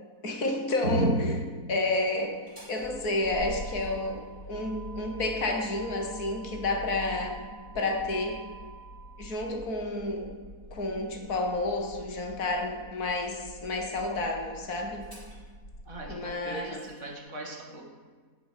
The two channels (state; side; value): late; right; 4.1 ms